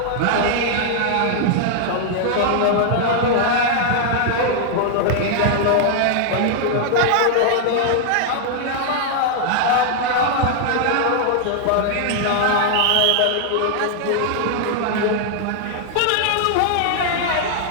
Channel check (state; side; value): different; both; correlation 0.00